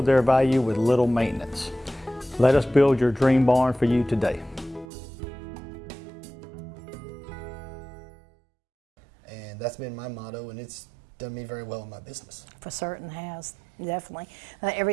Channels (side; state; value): left; drops out; at 4.9 s